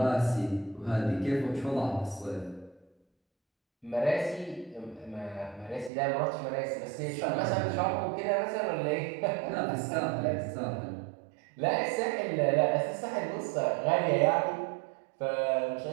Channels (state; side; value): drops out; left; at 5.9 s